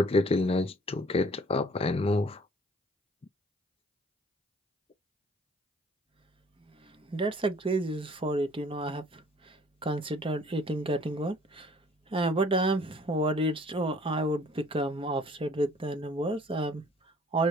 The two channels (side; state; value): both; normal; correlation 0.56